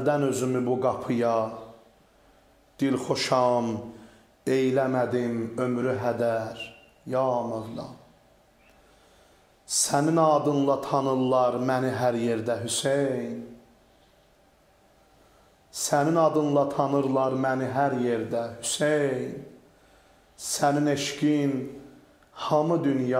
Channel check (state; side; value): identical; both; correlation 1.00